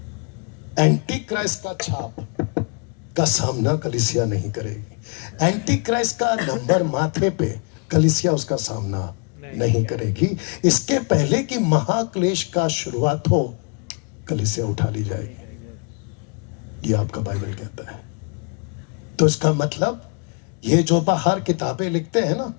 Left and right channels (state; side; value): quieter; right; 36.6 dB